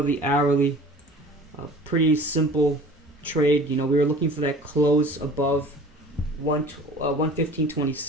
to the hourly, pretty simple trade. We were looking for that close above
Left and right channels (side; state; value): both; normal; correlation 0.44